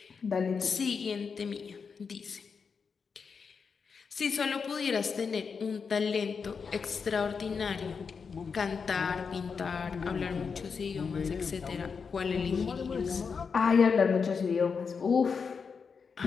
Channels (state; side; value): quieter; right; 5.7 dB